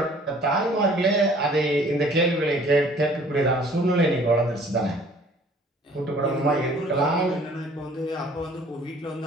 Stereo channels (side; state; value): both; normal; correlation 0.54